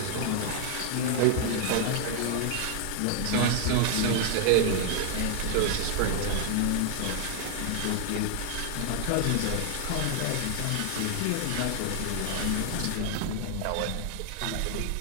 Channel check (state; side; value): different; both; correlation 0.00